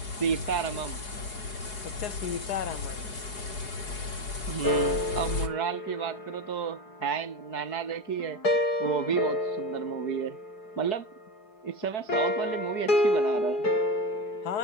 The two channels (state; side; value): late; right; 4.7 ms